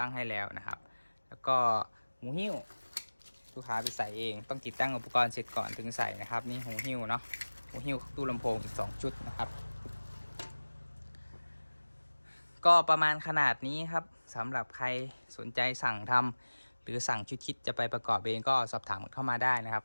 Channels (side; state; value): both; inverted; correlation -1.00